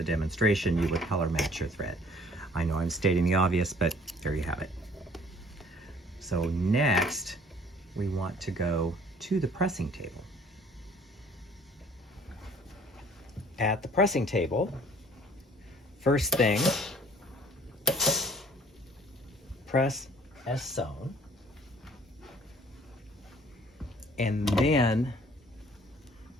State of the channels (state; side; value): normal; both; correlation 0.55